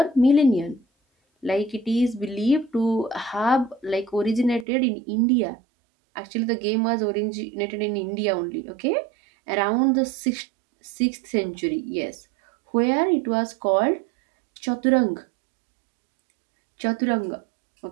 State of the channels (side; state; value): left; drops out; at 4.7 s